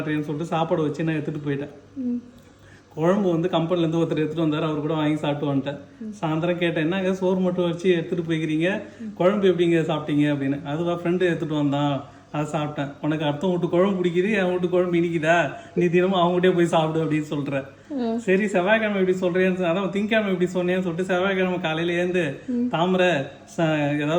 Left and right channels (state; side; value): identical; both; correlation 1.00